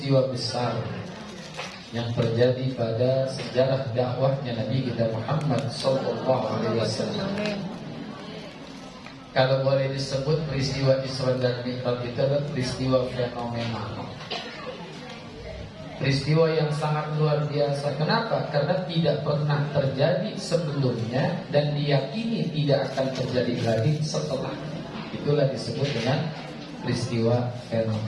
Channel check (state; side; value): identical; both; correlation 1.00